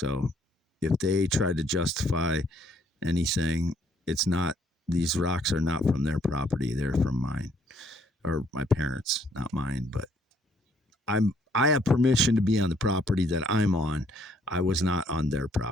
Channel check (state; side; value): normal; both; correlation 0.67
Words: if they try to justify anything, these rocks are not from their property. They're from mine, or my parents, not mine, but I have permission to be on the property that I'm on. I was not on their